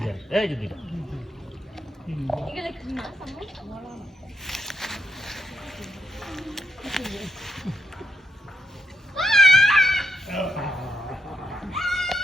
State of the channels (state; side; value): normal; both; correlation 0.79